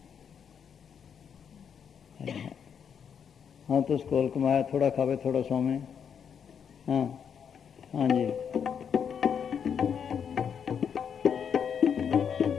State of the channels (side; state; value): right; quieter; 7.5 dB